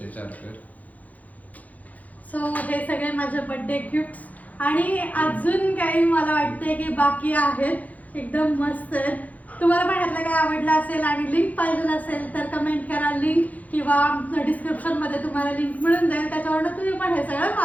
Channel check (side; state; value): right; late; 0.076 ms